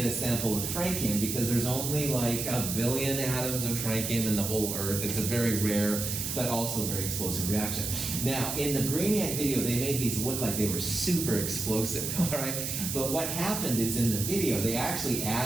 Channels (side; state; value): right; noise; hiss, 3 dB below the sound